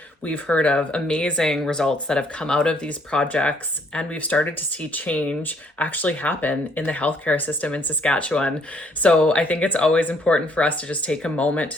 We've heard of amazing results that have come out of these projects, and we've started to see change actually happen in the healthcare system in Saskatchewan. So I think it's always important for us to just take a moment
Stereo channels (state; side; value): normal; both; correlation 0.66